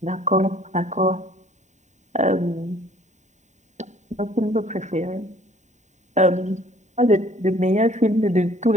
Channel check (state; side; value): late; left; 0.34 ms